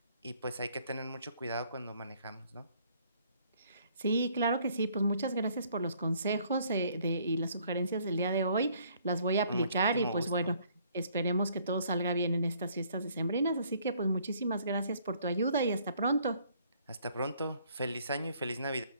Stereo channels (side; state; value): both; inverted; correlation -0.62